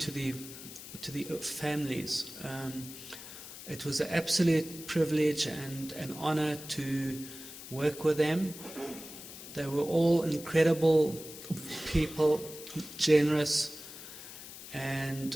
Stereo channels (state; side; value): noise; left; hiss, 13 dB below the sound